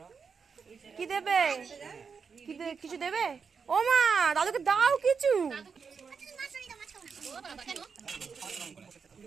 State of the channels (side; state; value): left; quieter; 5.7 dB